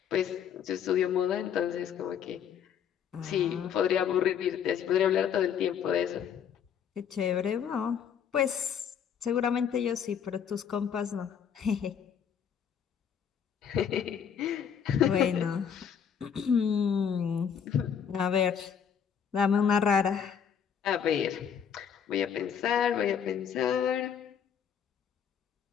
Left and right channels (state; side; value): quieter; right; 7.9 dB